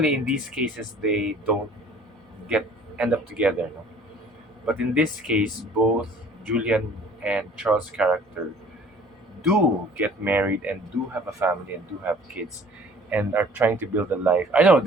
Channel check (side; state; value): both; normal; correlation 0.52